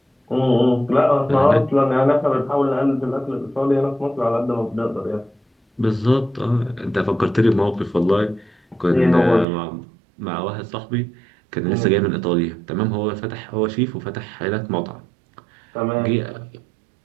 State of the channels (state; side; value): drops out; left; at 9.5 s